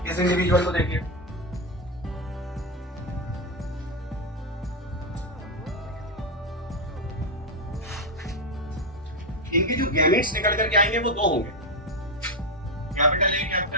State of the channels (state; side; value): normal; both; correlation 0.07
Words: इस इंडिविजुअल को देखिए, इनके जो गैमेट्स निकल करके आएंगे वो दो होंगे, capital A